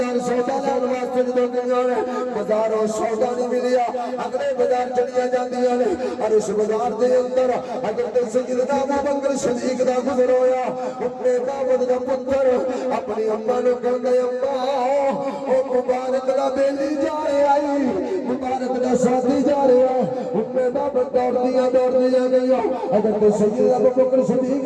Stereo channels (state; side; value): identical; both; correlation 1.00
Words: سودا لین واسطے جدوں گئیاں نے بازاروں سودا نہیں ملیا، اگلے بازار چلیاں جاندیاں نے. اور اس بازار دے اندر حضرت سیدنا ابو بکر صدیق دا گزر ہویا. اپنے بابا دا پتر اپنی اماں نوں کہندا اماں او مبارک دا بیلی جا رہا ہے، مبارک دا ساتھی جا رہا ہے. اپنے بابا دوڑدیاں گئیاں حضرت سیدنا ابو بکر صدیق